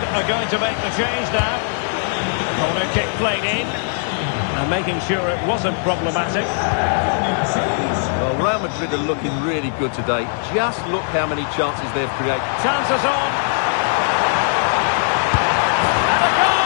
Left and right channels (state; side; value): silent; right; digital silence